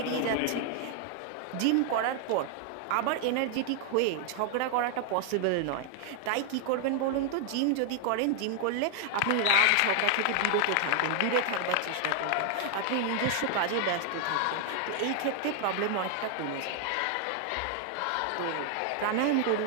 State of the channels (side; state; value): both; different; correlation 0.00